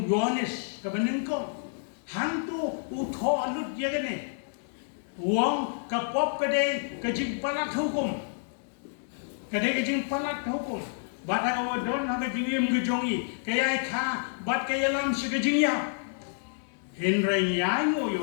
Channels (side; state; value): right; silent; digital silence